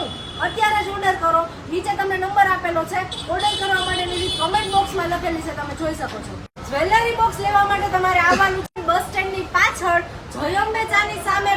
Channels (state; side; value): identical; both; correlation 1.00